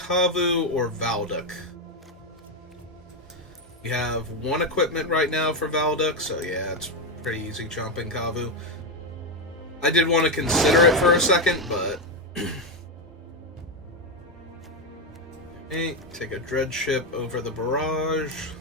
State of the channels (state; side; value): normal; both; correlation 0.07